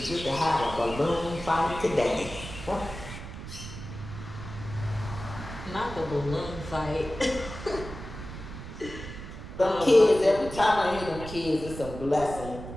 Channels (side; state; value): right; noise; rumble, 11 dB below the sound